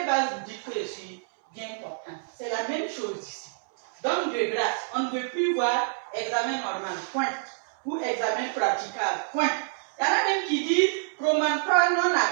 base vous dites que je suis bien portant? C'est la même chose ici. Donc de grâce, on ne veut plus voir examen normal, point. Ou examen praticable, point. Il y en a même qui disent promontoire non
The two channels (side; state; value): left; silent; 60 dB below the other